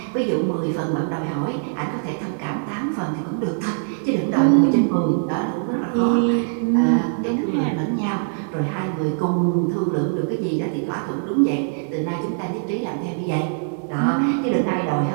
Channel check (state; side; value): silent; left; 63 dB below the other